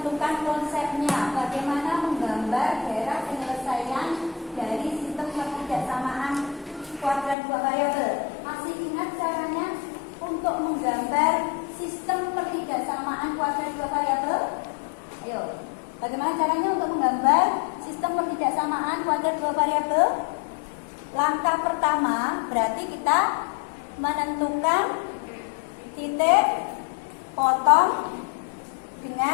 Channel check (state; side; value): drops out; right; at 7.4 s